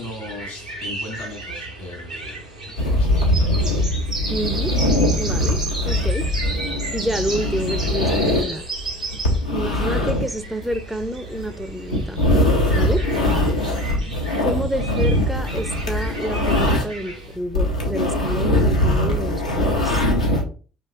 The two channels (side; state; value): both; normal; correlation 0.32